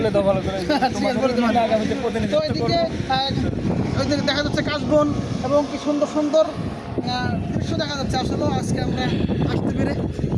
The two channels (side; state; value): both; identical; correlation 1.00